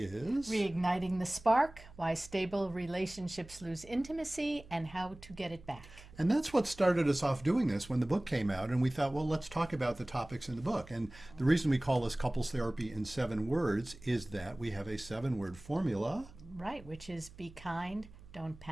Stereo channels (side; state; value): right; noise; hum, 20 dB below the sound